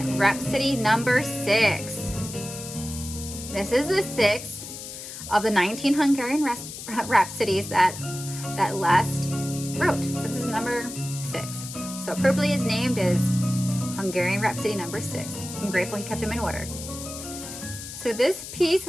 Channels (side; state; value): left; noise; hiss, 10 dB below the sound